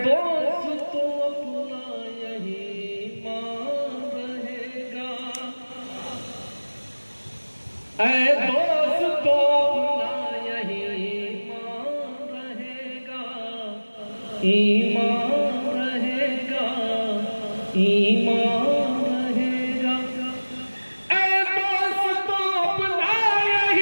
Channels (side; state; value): both; inverted; correlation -1.00